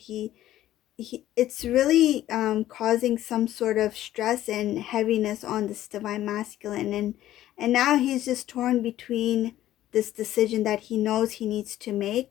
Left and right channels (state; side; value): quieter; right; 13.5 dB